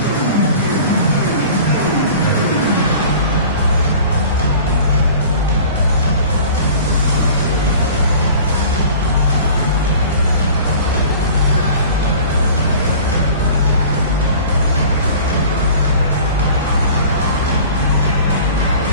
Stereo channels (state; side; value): inverted; both; correlation -0.43